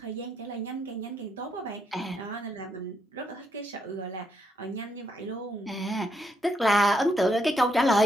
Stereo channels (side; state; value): both; normal; correlation 0.77